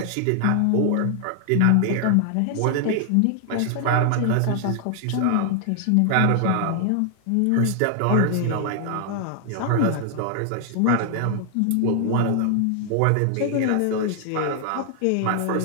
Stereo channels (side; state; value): both; different; correlation 0.00